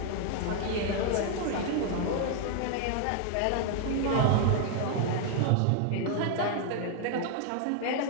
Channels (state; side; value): different; both; correlation 0.00